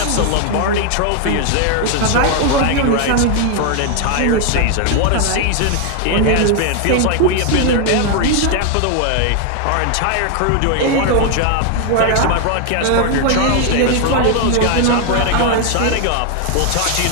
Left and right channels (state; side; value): different; both; correlation 0.00